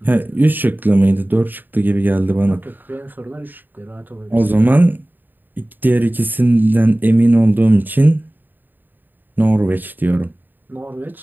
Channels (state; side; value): late; left; 0.090 ms